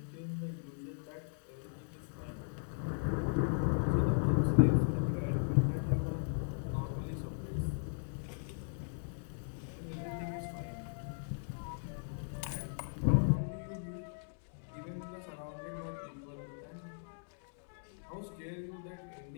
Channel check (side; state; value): right; silent; digital silence